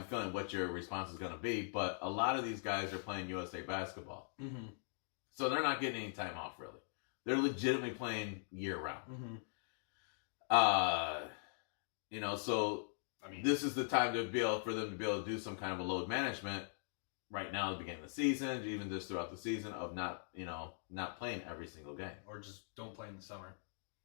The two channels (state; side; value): silent; right; digital silence